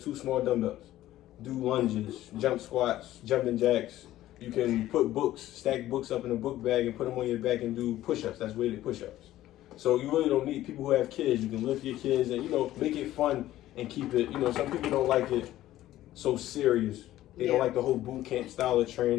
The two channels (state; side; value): quieter; right; 14.3 dB